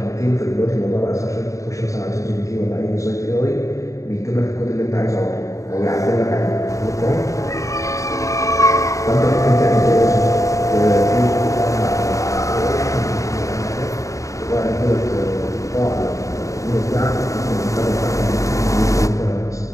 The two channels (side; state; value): right; late; 0.16 ms